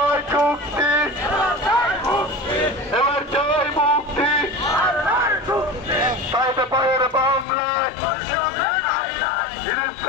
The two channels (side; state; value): right; drops out; at 7.5 s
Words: চুক্তি, এবার চাই মুক্তি। পাইতে পায়ের বাংলায়,